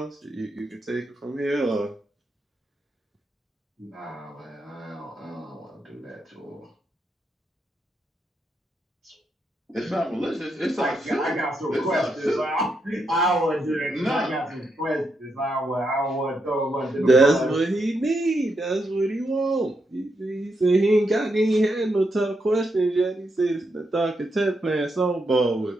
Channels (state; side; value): normal; both; correlation 0.81